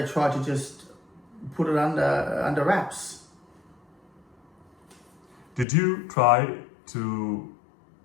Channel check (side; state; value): right; drops out; at 5.7 s